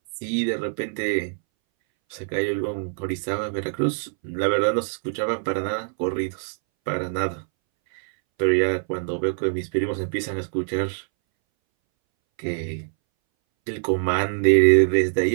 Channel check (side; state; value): left; silent; 62 dB below the other